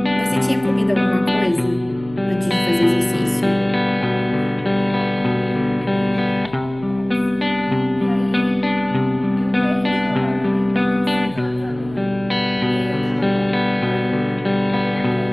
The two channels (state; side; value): noise; left; hum, 20 dB below the sound